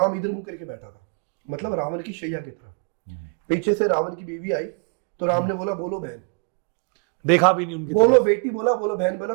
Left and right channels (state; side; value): quieter; left; 37.9 dB